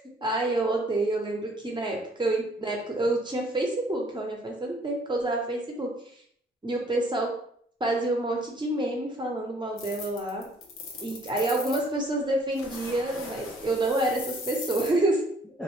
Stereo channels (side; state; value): both; normal; correlation 0.60